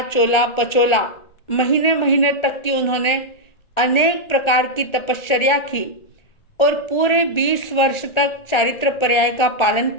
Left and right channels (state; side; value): late; right; 1.4 ms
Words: चोला, पचोला महीने महीने तक की उन्होंने अनेक प्रकार की तपश्चर्या की और पूरे 20 वर्ष तक चारित्र पर्याय का पालन